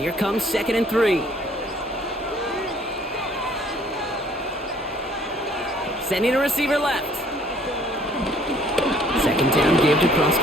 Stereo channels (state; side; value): normal; both; correlation 0.59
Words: comes 2nd and 3. Sending a receiver left. 2nd down give to